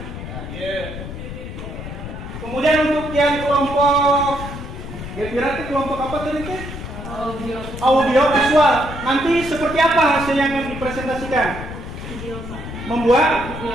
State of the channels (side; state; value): left; noise; rumble, 9 dB below the sound